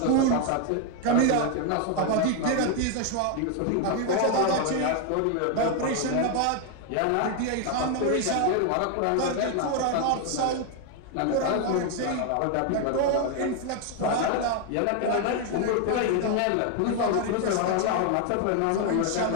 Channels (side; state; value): both; different; correlation 0.01